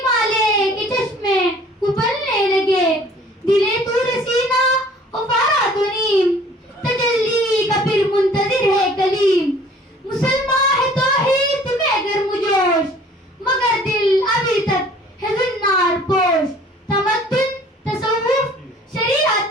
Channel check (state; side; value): normal; both; correlation 0.52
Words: کے چشمے ابلنے لگے. دلے تور سینہ افارا تو نیم, تجلی کا پھر منتظر ہے کلیم. مسلمان ہے توحید میں گرم جوش, مگر دل ابھی تک ہے زنار پوش. تمدن تصوف